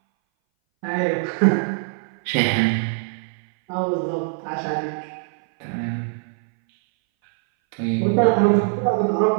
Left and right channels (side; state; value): left; silent; 60 dB below the other